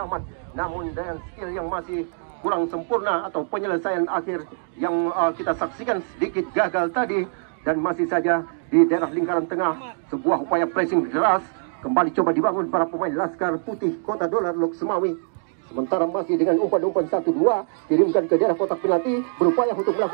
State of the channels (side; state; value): left; silent; digital silence